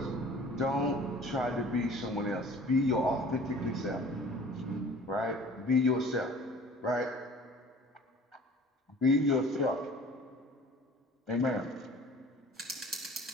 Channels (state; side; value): normal; both; correlation 0.47